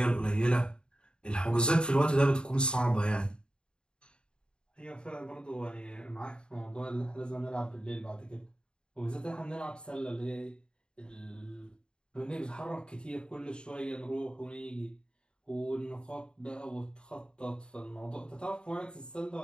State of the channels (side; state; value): right; late; 0.051 ms